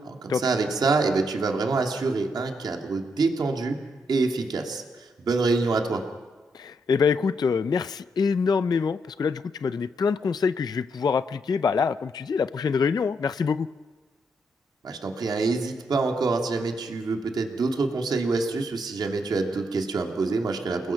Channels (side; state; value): both; normal; correlation 0.78